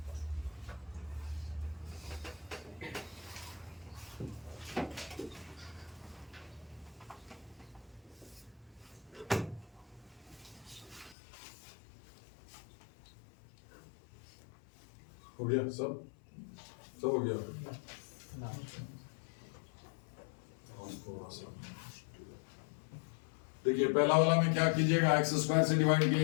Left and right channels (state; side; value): drops out; right; at 11.2 s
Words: हो गया सब? सब हो गया? देखिए पहला वाला में क्या कीजिएगा, एक्स स्क्वायर से डिवाइड